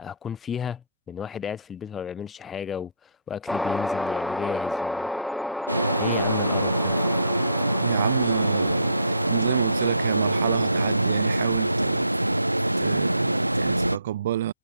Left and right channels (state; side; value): inverted; both; correlation -0.63